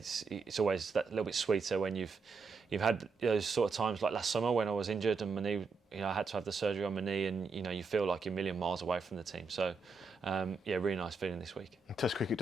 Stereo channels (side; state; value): left; quieter; 4.4 dB